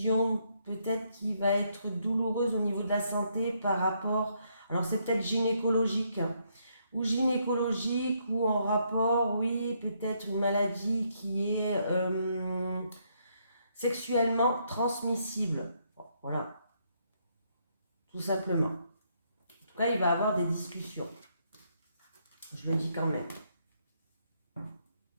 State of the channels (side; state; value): both; inverted; correlation -0.74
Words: peut-être qui va être douloureuse au niveau de la santé par rapport, alors c'est peut-être gynécologique, ou en rapport, oui, peut-être une maladie qui est sexuellement transmissible. Bon, voilà, tout simplement. En tout cas, il va y avoir des discussions. Je le dis quand même.